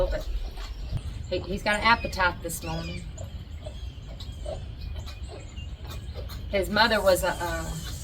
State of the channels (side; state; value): both; identical; correlation 1.00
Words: but he's got an appetite this morning. His mother was